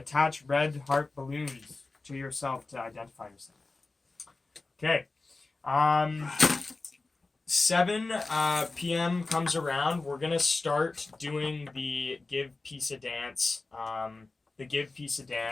red heart balloons to yourself to identify yourself. Okay. 7 p.m. comes around. We're gonna start doing the Give Piece of Dance,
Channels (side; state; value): right; quieter; 3.5 dB